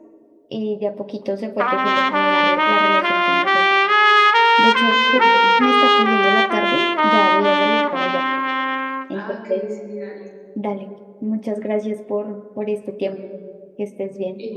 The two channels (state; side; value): identical; both; correlation 1.00